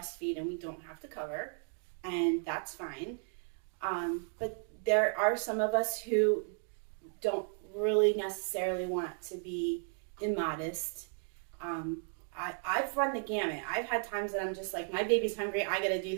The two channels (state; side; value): silent; left; 55 dB below the other